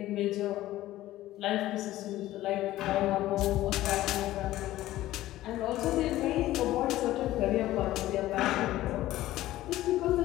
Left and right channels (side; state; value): right; quieter; 15.3 dB